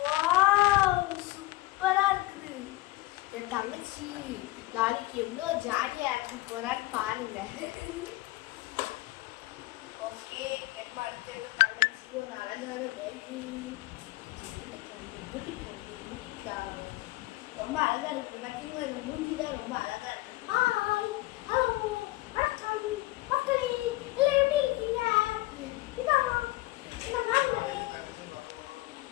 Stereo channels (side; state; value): right; quieter; 19.1 dB